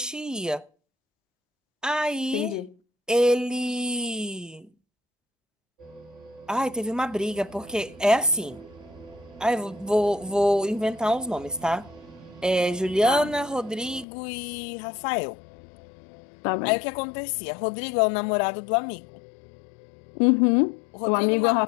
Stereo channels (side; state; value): right; drops out; at 14.1 s